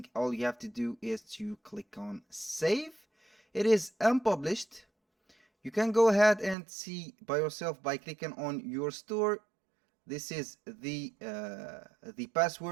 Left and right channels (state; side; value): drops out; left; at 6.6 s